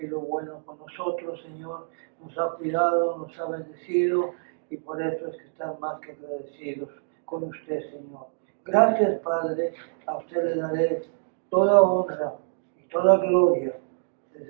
bueno con nosotros, Señor, nos ha cuidado, nos ha bendecido, y por eso es que están más que agradecidos con usted, Señor. Gracias, Padre, a usted le daré toda honra y toda gloria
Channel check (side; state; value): left; silent; digital silence